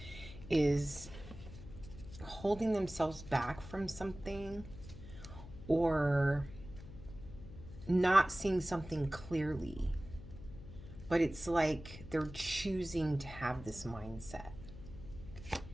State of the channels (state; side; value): noise; left; hum, 14 dB below the sound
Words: is holding themselves back from something or not seeing something clearly. But it's like they're choosing to have this mindset.